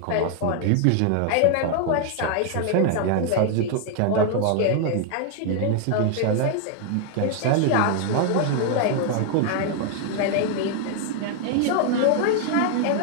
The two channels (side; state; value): both; different; correlation 0.00